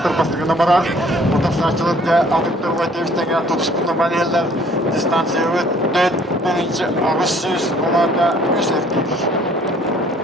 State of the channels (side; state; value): both; normal; correlation 0.58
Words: bastığına barar. Burada saçılıkta adıktır ve devişten tutuşkunla maneller distansiya ve 4 Ağustos olanda 3 erkek.